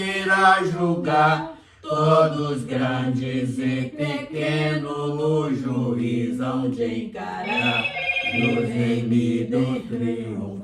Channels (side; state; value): both; identical; correlation 1.00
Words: julgar. Todos grandes e pequenos no juízo hão de encarar. Nos remidos